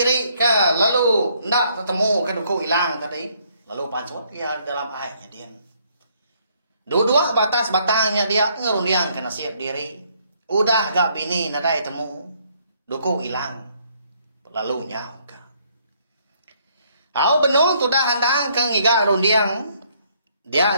ke lalu nak ketemu ke duku hilang tadi lalu pancot ya dalam ayatnya dia dua batas batangnya dia ngerundiang ke nasib diri udah gak bini nadai temu duku hilang lalu nyau ke au benuh tudah handang ke ngiga rundiang dia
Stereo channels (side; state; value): both; inverted; correlation -0.68